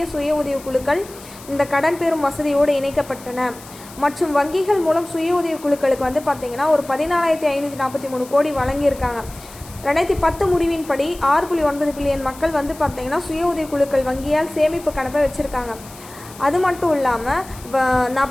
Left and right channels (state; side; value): noise; left; hiss, 19 dB below the sound